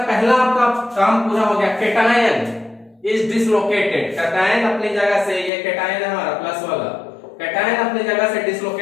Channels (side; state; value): right; drops out; at 5.5 s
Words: पहला आपका काम पूरा हो गया, कैटायन इज डिसलोकेटेड। कैटायन अपनी जगह से, ये कैटायन है हमारा प्लस वाला, कैटायन अपनी जगह से